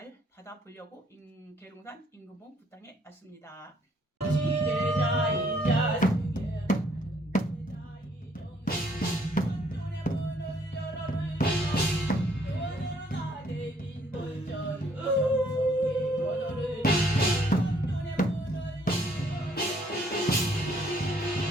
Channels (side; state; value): both; normal; correlation 0.65